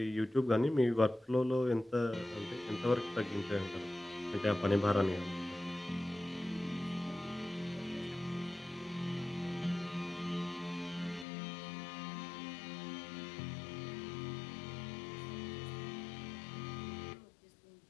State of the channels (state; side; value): drops out; right; at 11.2 s